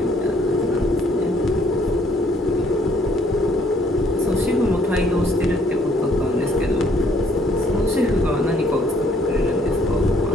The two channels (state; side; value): normal; both; correlation 0.65